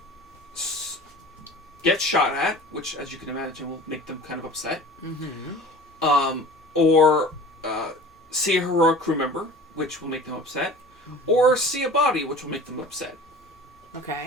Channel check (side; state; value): both; normal; correlation 0.41